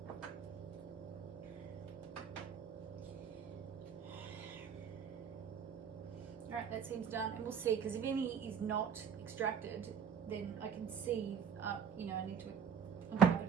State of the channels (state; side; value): quieter; left; 7.3 dB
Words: Alright, that seems done, and we'll see, because if any is not extracted, then I can see, you know, I need to uncap it